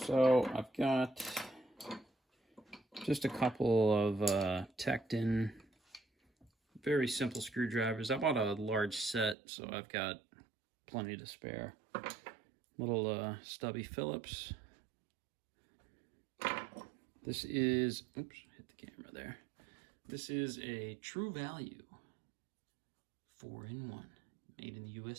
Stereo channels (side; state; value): left; drops out; at 9.3 s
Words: I've got just a couple of tacked in, very simple screwdrivers. I bought a large set, so I've got plenty to spare. Little stubby Phillips. This is, oops, hit the camera there. This is a True Value 4-in-1, made in the